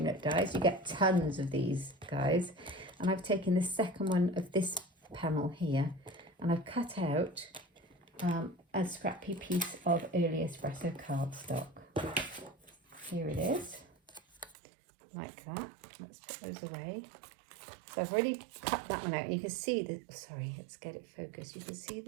dies. You get tons of these guys. And I've taken the second one of this panel here, and I've cut out a scrappy piece of early espresso cardstock. Here it is, like that. Let's put those away. So I've already cut that one out, and you can see the, sorry, let's get it focused. You can see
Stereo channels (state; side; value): drops out; left; at 14.6 s